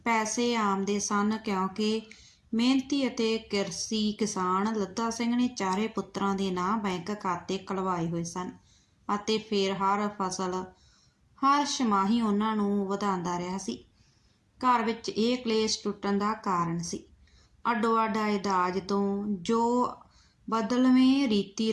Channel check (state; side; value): identical; both; correlation 1.00